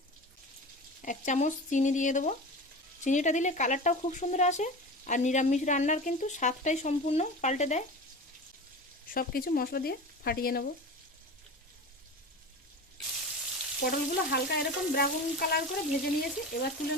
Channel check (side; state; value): both; normal; correlation 0.31